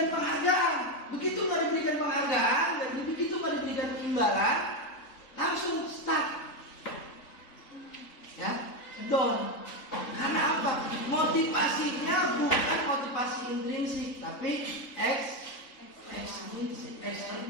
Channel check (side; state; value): right; late; 3.7 ms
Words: penghargaan. Begitu nggak diberikan penghargaan, begitu nggak diberikan imbalan, langsung stuck, ya, down. Karena apa? Motivasinya bukan motivasi intrinsik, tapi ekstrinsik,